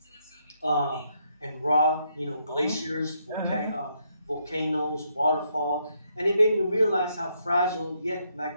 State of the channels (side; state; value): both; inverted; correlation -0.76